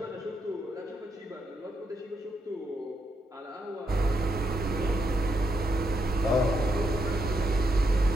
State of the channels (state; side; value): normal; both; correlation 0.80